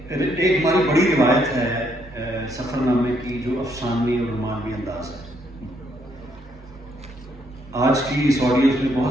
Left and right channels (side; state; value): both; normal; correlation 0.72